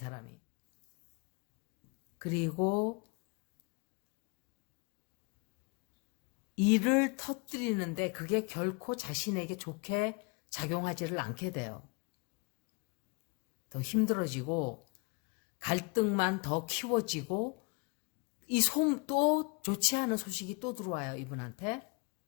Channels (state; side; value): quieter; right; 31.2 dB